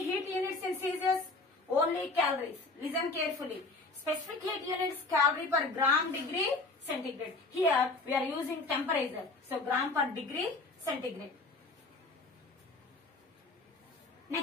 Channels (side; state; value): right; quieter; 3.4 dB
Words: in Celsius only calories. Listen carefully. Specific heat units calorie per gram degree centigrade. Here we are using temperature. So gram per degree centigrade.